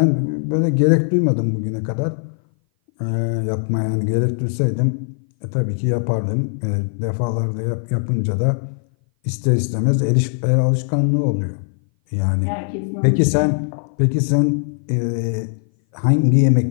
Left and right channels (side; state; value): right; silent; 59 dB below the other